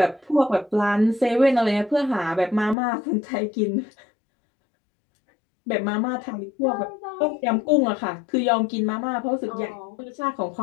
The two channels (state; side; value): drops out; right; at 2.8 s